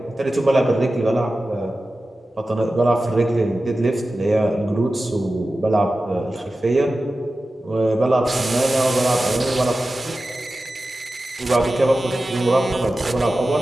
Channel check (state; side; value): normal; both; correlation 0.94